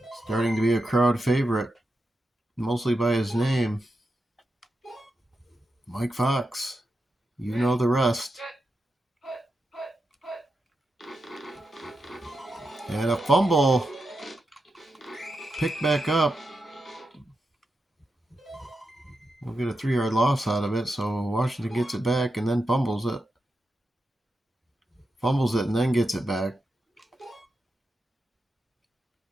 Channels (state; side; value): normal; both; correlation 0.88